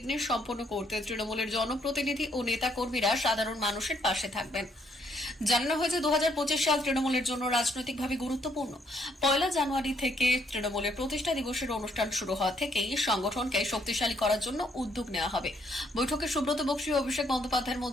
সম্পন্ন করতে তৃণমূলের জনপ্রতিনিধি ও নেতা কর্মীরা সাধারণ মানুষের পাশে থাকবেন। জানানো হয়েছে 2025 সাল তৃণমূলের জন্য রাজনৈতিকভাবে গুরুত্বপূর্ণ। 1 জানুয়ারি থেকে তৃণমূলের প্রতিষ্ঠা দিবসের অনুষ্ঠান শুরু হওয়া থেকেই সংগঠনকে শক্তিশালী করার জন্য উদ্যোগ নেওয়া হবে। বৈঠকে সুব্রত বক্সী ও অভিষেক বন্দ্যোপাধ্যায়ের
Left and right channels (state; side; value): normal; both; correlation 0.70